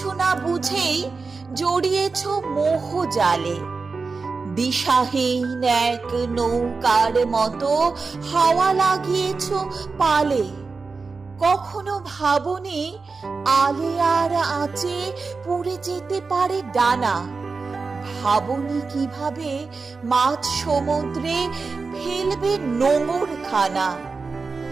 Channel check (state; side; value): quieter; left; 4.4 dB